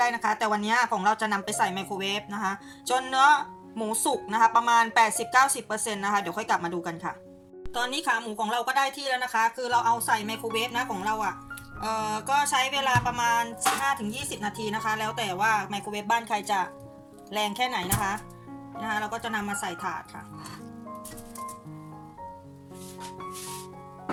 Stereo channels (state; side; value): identical; both; correlation 1.00